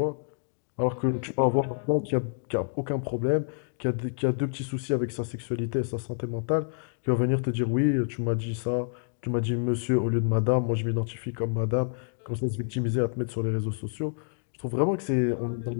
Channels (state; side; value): silent; right; digital silence